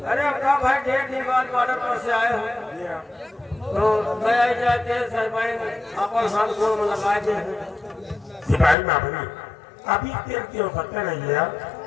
अरे अपना भाई 1.5 दिन बाद बॉर्डर पर से आए हैं तो मैं आई जाते सिपाही अपन हाथ को लगाए थे। सिपाही मामला अभी तेल की आवश्यकता नहीं है यार।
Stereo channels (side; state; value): right; drops out; at 8.8 s